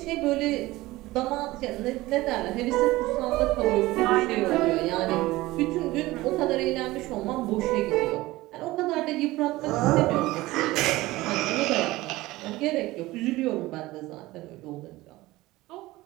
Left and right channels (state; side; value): quieter; left; 18.8 dB